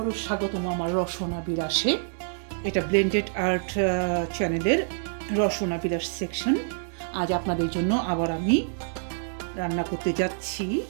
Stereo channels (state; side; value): silent; left; 60 dB below the other